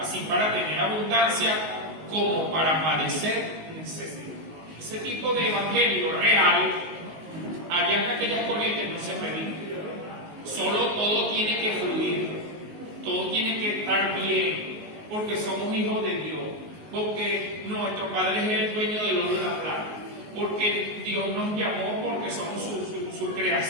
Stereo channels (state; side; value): late; left; 19 ms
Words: para tener abundancia como para padecer necesidad. Ese tipo de evangelio real, allá en aquellas corrientes no se predica. Solo todo tiene que fluir, todo tiene que estar bien, porque somos hijos de Dios, porque nuestro Padre es el dueño del oro y la plata, porque Dios nos llamó, porque somos su